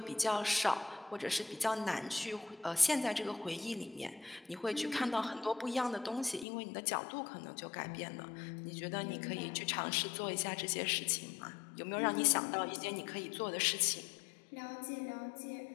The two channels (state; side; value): drops out; right; at 6.5 s